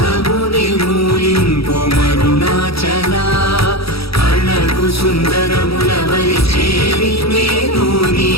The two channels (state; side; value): late; right; 0.76 ms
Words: నిర్మూలింపు మరుణాచల అళగు సుందరముల వలి చేరి నేను నీ